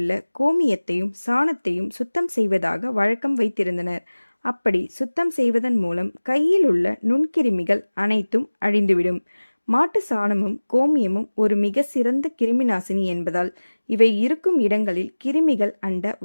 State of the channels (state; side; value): inverted; both; correlation -1.00